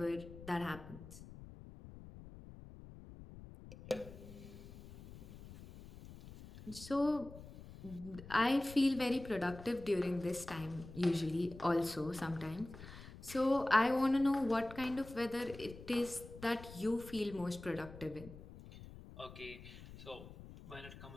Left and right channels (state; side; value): noise; left; rumble, 15 dB below the sound